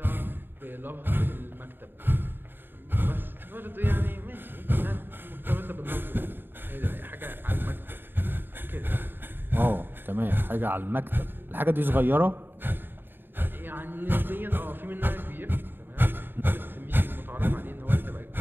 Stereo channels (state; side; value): late; left; 0.096 ms